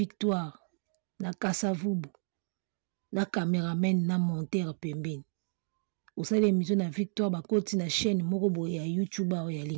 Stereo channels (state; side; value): silent; left; digital silence